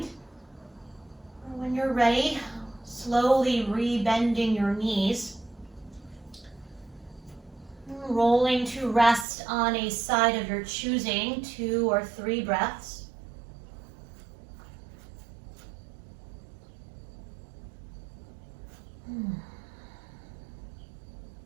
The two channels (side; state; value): left; drops out; at 9.2 s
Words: When you're ready, slowly re-bending your knees. Rolling to rest on a side of your choosing, 2 or 3 breaths.